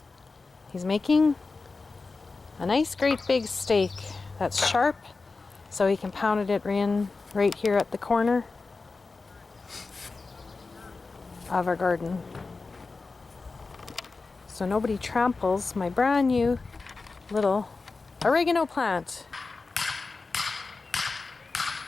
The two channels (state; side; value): quieter; right; 4.0 dB